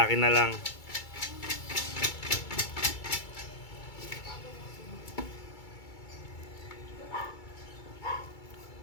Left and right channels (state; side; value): late; right; 2.3 ms